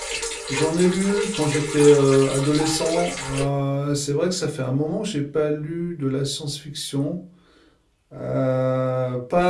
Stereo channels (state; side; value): identical; both; correlation 1.00